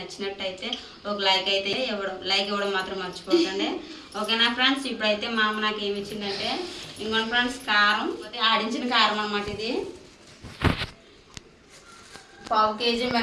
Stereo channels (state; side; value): identical; both; correlation 1.00